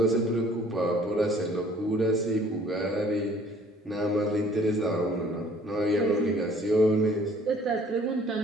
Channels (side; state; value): both; normal; correlation 0.55